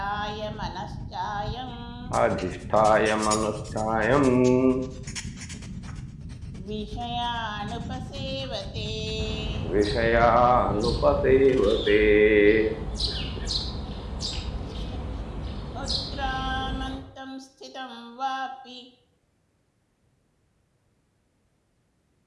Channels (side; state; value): both; identical; correlation 1.00